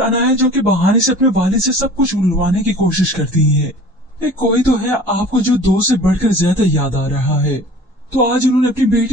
अनाया जो के बहाने से अपने वालिद से सब कुछ उलवाने की कोशिश करती है। कोई तो है आपको जो दो से बढ़कर ज्यादा याद आ रहा है। तो आज उन्होंने अपनी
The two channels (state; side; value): normal; both; correlation 0.44